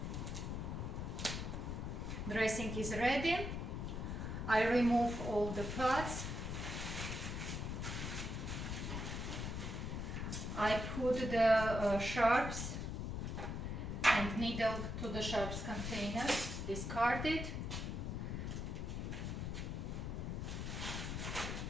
Dressing is ready. I remove all the parts. I put the sharps and needle to the sharps container, discard it.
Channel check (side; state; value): left; noise; rumble, 3 dB below the sound